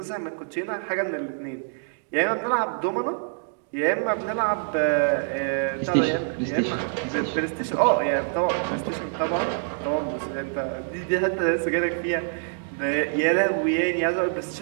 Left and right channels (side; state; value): left; silent; digital silence